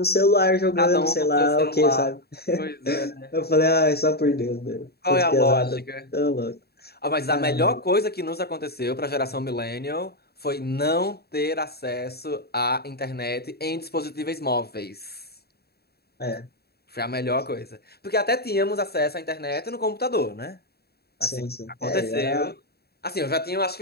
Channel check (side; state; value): right; late; 0.46 ms